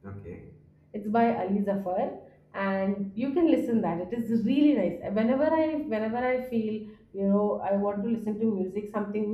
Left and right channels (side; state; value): both; identical; correlation 1.00